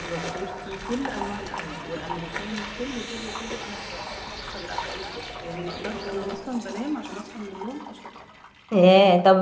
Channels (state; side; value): identical; both; correlation 1.00